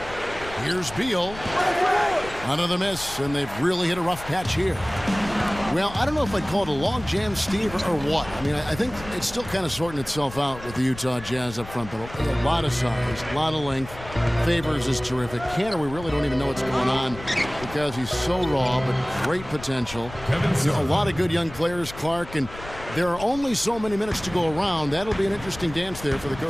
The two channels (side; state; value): left; noise; rumble, 15 dB below the sound